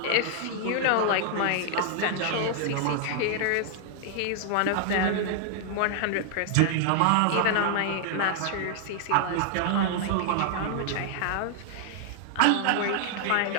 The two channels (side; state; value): both; different; correlation -0.01